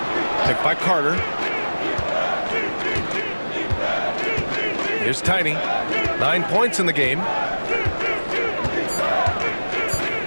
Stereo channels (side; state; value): both; inverted; correlation -1.00